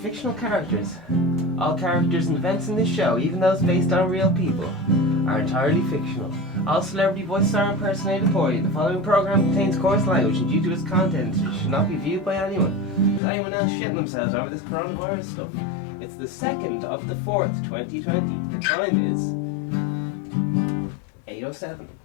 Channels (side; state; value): right; drops out; at 13.2 s